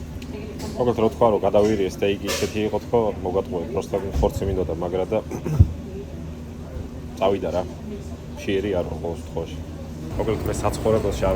მოგეთ რო თქვა რომ გადავირიე სტეიკი ისეთი იყო თქო მოგატყუე პროსტა ხორცი მინდოდა მაგრა და წავიდა რა შეერი არ ყოველ შემთხვევაში მოგეთ მე საცხოვრებელში არ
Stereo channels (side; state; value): both; identical; correlation 1.00